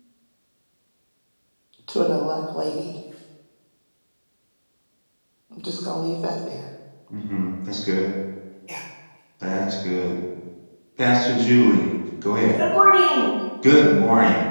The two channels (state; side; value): inverted; both; correlation -1.00